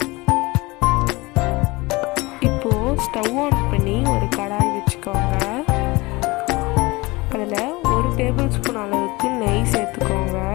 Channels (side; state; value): right; quieter; 23.0 dB